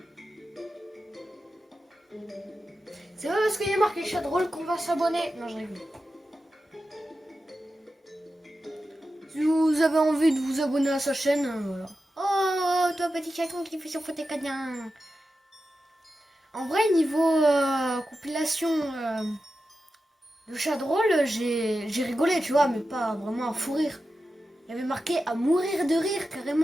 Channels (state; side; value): normal; both; correlation 0.91